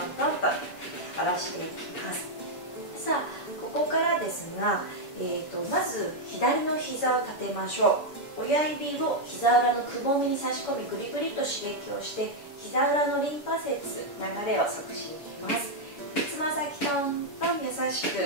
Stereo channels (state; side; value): late; right; 7.0 ms